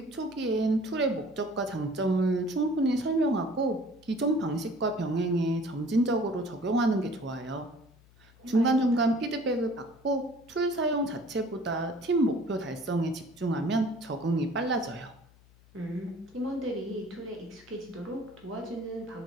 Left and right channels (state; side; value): noise; left; hum, 27 dB below the sound